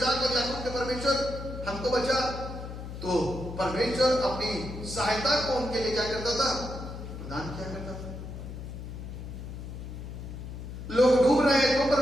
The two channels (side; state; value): left; noise; hum, 9 dB below the sound